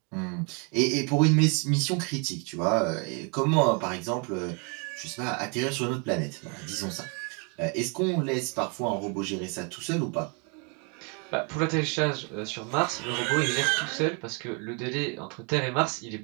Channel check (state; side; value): quieter; left; 34.9 dB